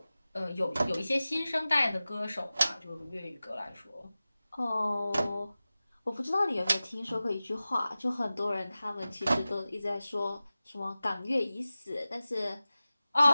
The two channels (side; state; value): both; inverted; correlation -0.96